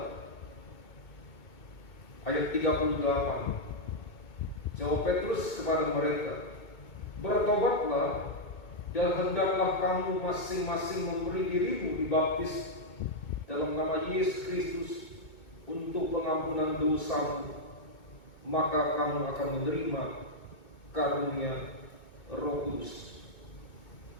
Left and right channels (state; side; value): late; right; 2.2 ms